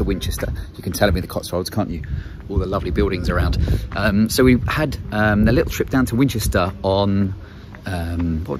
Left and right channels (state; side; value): identical; both; correlation 1.00